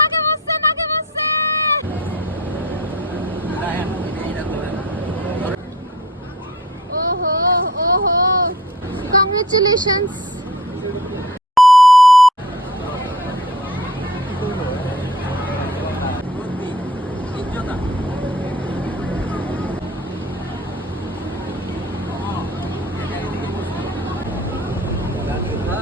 বসছে নাকে বসছে ওহো ওহো congratulations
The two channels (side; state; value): both; normal; correlation 0.45